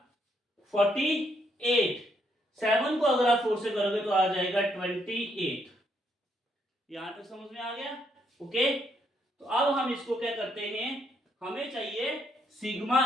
48, 7 को अगर आप 4 से करोगे तो आ जाएगा 28। यहां तक समझ में आ गया। ओके, तो अब हम इसको क्या करते हैं, हमें चाहिए सिग्मा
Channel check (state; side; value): normal; both; correlation 0.74